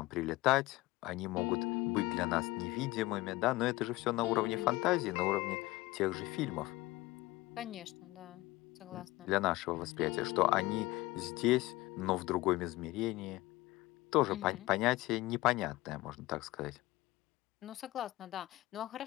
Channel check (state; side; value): quieter; right; 19.2 dB